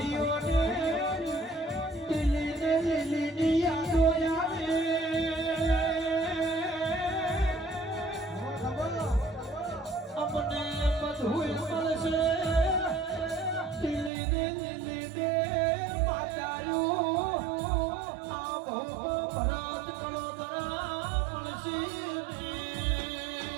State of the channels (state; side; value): drops out; left; at 14.1 s